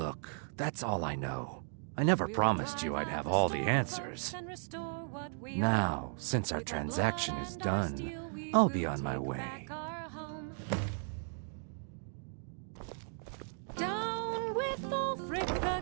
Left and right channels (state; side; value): silent; left; 54 dB below the other